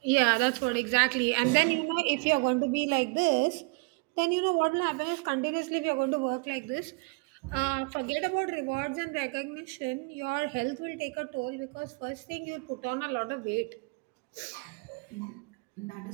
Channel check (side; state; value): left; quieter; 30.9 dB